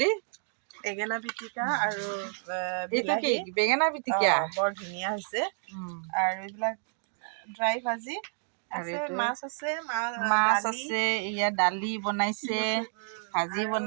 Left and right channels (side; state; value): left; silent; 58 dB below the other